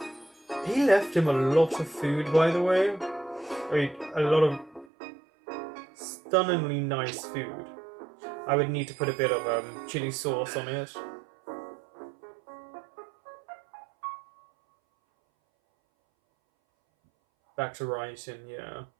He left him a lot of food, by the way. I mean, a lot of stunningly nice food. I would need to put a bit of chili sauce on it. Back to writing, yeah.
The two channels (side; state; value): left; drops out; at 4.9 s